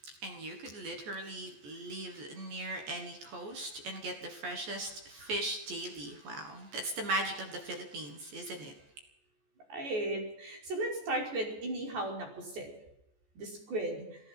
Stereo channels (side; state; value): left; late; 14 ms